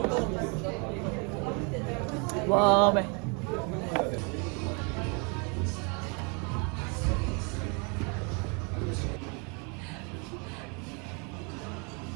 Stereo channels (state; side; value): quieter; left; 34.0 dB